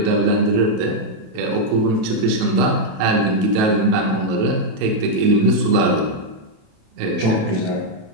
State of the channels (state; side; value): late; left; 28 ms